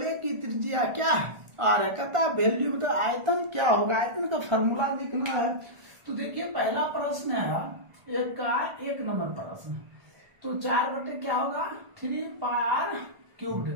की त्रिज्या क्या है? आर है। कहता है वैल्यू मतलब आयतन क्या होगा, आयतन का फॉर्मूला लिखना है। तो देखिए पहला प्रश्न है एक नंबर प्रश्न। तो 4 बटे क्या होगा? 3πr²।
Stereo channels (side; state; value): left; late; 1.4 ms